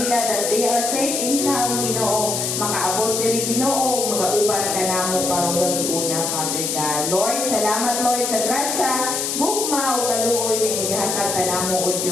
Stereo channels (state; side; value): noise; left; hiss, 1 dB below the sound